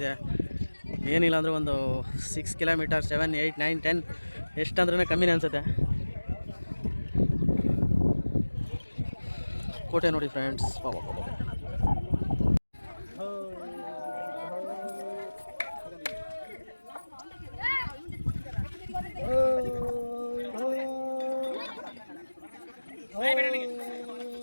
ಏನಿಲ್ಲ ಅಂದರೆ ಒಂದು 6 ಕಿಲೋಮೀಟರ್, 7, 8, 9, 10 ಎಷ್ಟಂದ್ರೂ ಕಮ್ಮಿನೇ ಅನಿಸುತ್ತೆ. ಕೋಟೆ ನೋಡಿ ಫ್ರೆಂಡ್ಸ್.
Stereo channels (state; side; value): inverted; both; correlation -1.00